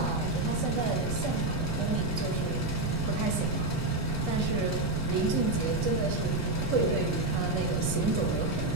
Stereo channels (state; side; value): noise; right; rumble, 4 dB below the sound